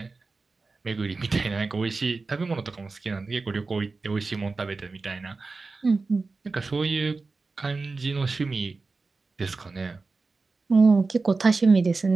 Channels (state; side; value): quieter; left; 3.9 dB